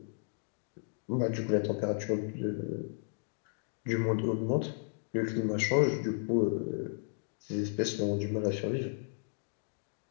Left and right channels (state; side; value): silent; right; digital silence